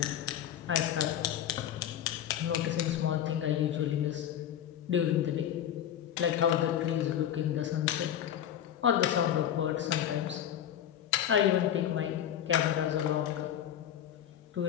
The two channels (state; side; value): quieter; right; 10.4 dB